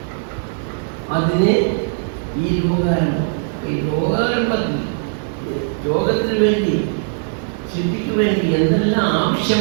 അതിന് ഈ ലോകാരംഭം, ഈ ലോകാരംഭത്തിൽ ലോകത്തിന് വേണ്ടി സൃഷ്ടിക്ക് വേണ്ടി എന്തെല്ലാം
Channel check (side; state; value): left; silent; 66 dB below the other